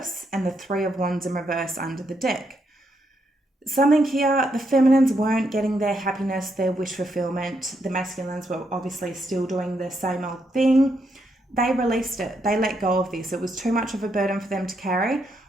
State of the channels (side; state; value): both; normal; correlation 0.78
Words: and the Three of Wands in reverse under the deck. Something here, the feminines weren't getting their happiness, their wish fulfillment. The masculines were obviously still doing the same old thing. They released it. They let go of this. It was too much of a burden for them to carry.